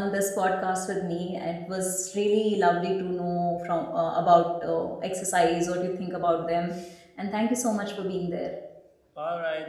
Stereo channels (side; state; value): both; identical; correlation 1.00